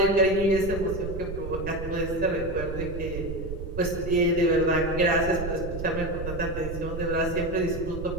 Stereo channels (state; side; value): noise; right; rumble, 7 dB below the sound